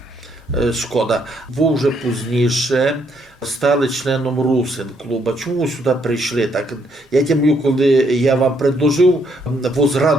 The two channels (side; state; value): both; normal; correlation 0.72